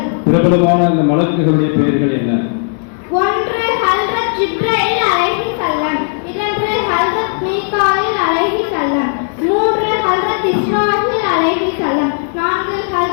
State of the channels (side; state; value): right; silent; digital silence